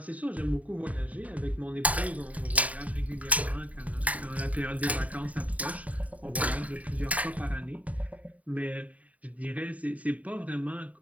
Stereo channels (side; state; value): left; late; 0.070 ms